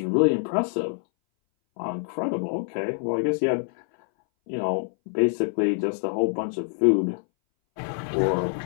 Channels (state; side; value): silent; right; 60 dB below the other